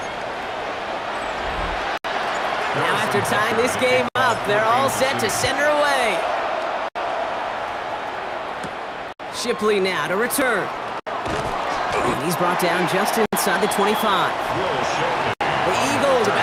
Now after tying this game up, they're all set to send her away. Shipley now to return. And he's brought down just inside the 25. The Eagles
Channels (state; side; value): identical; both; correlation 1.00